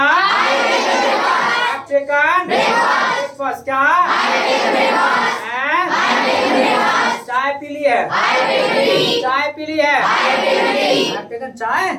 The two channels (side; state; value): both; identical; correlation 1.00